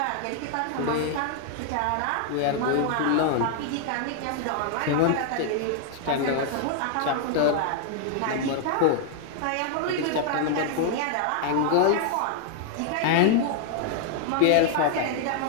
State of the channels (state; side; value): different; both; correlation 0.00